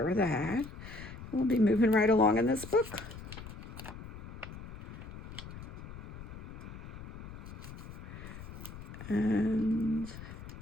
of that. We'll be moving right along in this book. And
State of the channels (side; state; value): left; noise; rumble, 12 dB below the sound